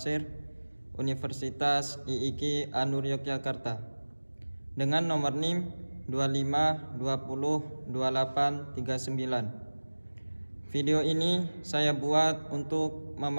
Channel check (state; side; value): inverted; both; correlation -1.00